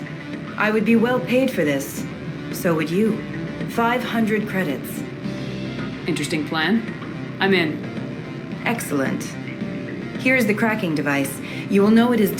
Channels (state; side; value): identical; both; correlation 1.00